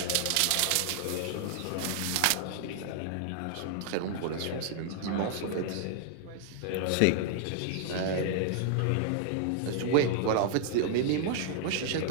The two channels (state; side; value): different; both; correlation -0.01